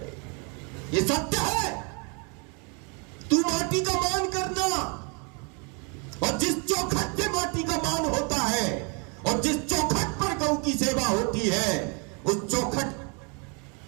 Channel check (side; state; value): left; quieter; 34.4 dB